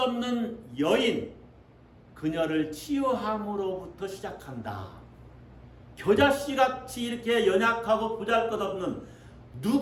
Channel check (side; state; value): both; identical; correlation 1.00